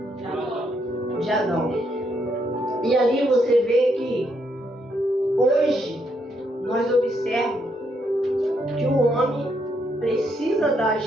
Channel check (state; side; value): normal; both; correlation 0.76